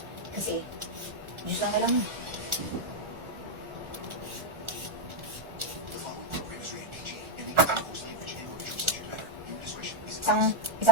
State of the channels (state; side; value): late; left; 1.4 ms